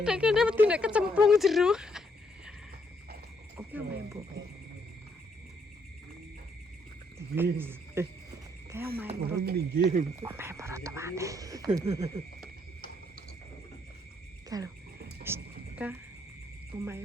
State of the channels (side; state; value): both; normal; correlation 0.72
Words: nek kene mesti nek kecemplung jero. Oke main mbok. Kayak main Orang minggir. main perut mati. Kalau ka